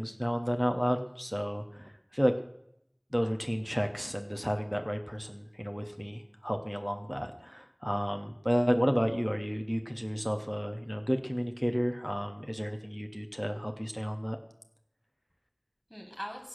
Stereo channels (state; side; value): identical; both; correlation 1.00